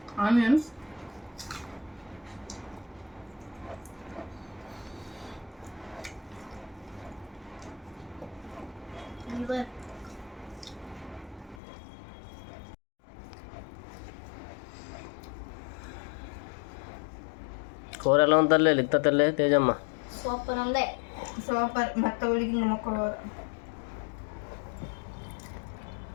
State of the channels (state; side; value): drops out; right; at 11.6 s